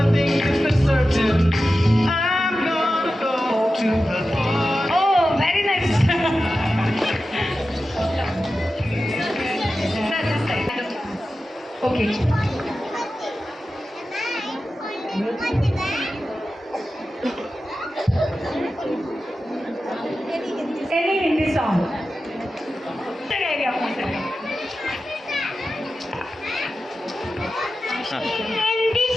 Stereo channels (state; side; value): normal; both; correlation 0.93